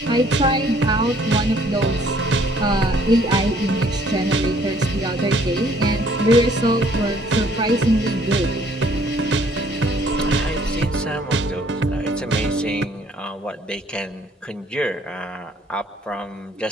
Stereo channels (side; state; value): both; normal; correlation 0.61